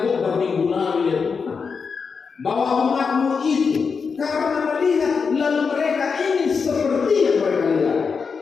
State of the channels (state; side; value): quieter; right; 5.5 dB